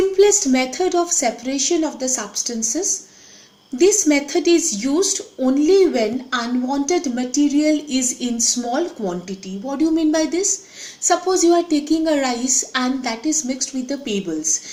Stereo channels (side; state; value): both; identical; correlation 1.00